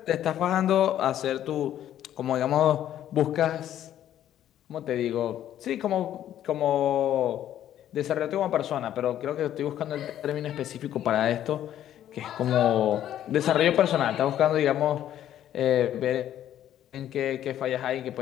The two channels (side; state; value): right; quieter; 11.4 dB